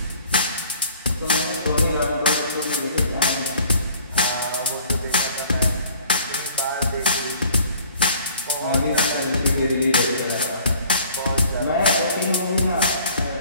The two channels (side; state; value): both; inverted; correlation -0.53